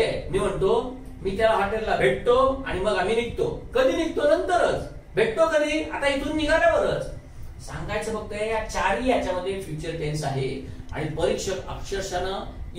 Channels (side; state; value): both; identical; correlation 1.00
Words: मी म्हणतो मी त्याला हॉटेलला भेटतो आणि मग आम्ही निघतो. कधी निघतो? नंतरच. भेटतो कधी? आता इथून निघाल्यावरच. सांगायचं फक्त या चारही याच्यामध्ये फ्युचर टेन्स आहे. आणि परीक्षक अक्षरशः